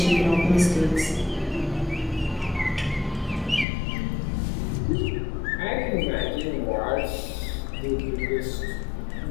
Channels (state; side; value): drops out; right; at 3.7 s